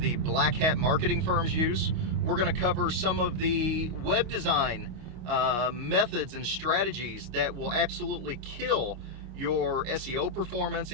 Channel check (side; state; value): left; late; 25 ms